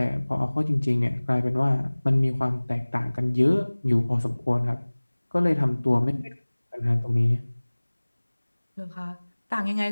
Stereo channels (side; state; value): both; inverted; correlation -1.00